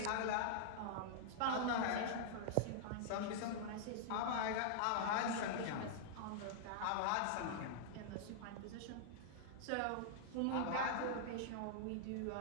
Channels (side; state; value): both; different; correlation -0.01